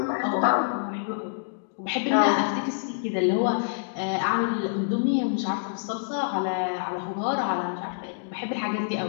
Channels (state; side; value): silent; right; digital silence